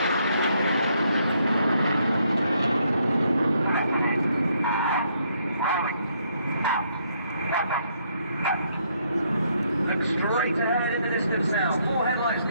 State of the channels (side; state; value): both; inverted; correlation -0.72